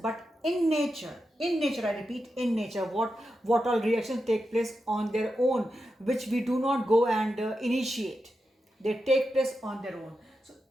in nature, I repeat, in nature, what all reactions take place on their own, which we do not go and initiate. They take place on their own. So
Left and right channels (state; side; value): normal; both; correlation 0.89